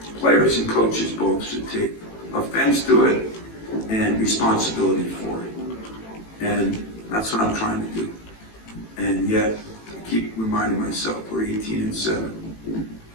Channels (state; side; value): late; right; 18 ms